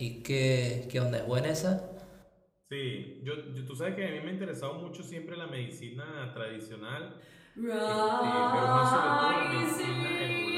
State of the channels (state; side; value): identical; both; correlation 1.00